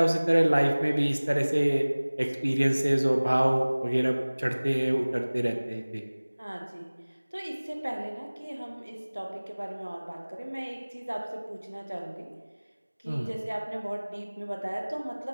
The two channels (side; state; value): both; inverted; correlation -1.00